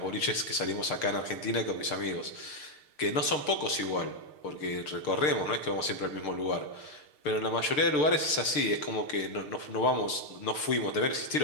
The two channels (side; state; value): right; late; 6.7 ms